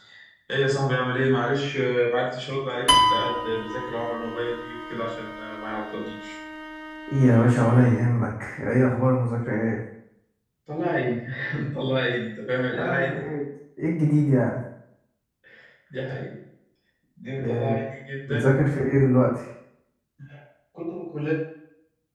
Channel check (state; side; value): identical; both; correlation 1.00